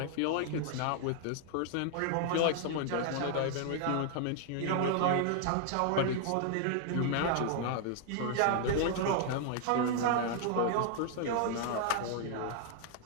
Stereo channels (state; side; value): different; both; correlation 0.00